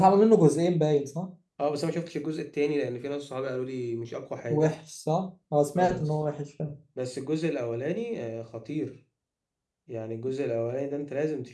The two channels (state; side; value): identical; both; correlation 1.00